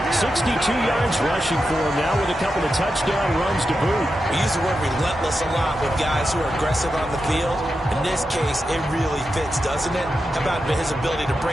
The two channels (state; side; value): normal; both; correlation 0.89